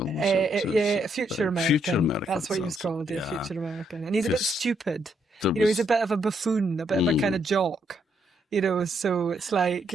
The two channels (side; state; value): both; normal; correlation 0.75